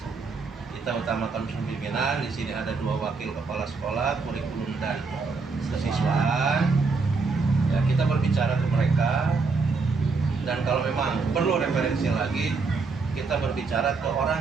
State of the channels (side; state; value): left; quieter; 4.4 dB